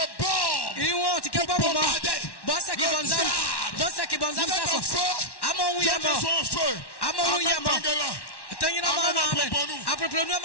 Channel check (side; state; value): right; late; 1.1 ms